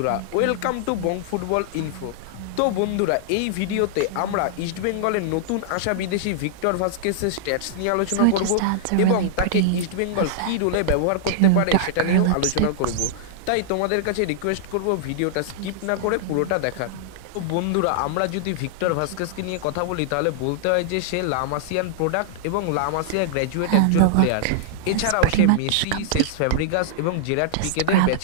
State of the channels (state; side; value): different; both; correlation -0.01